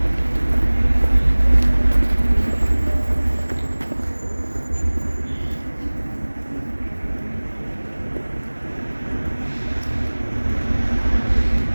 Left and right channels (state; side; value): inverted; both; correlation -1.00